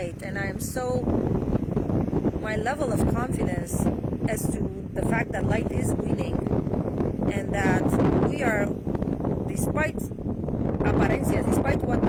and I am so, my level of confidence as to the fact that light is winning, and that we are, despite apariencia, despite what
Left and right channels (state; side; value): identical; both; correlation 1.00